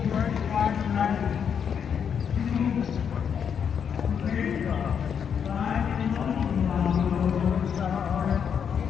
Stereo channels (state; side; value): quieter; right; 7.5 dB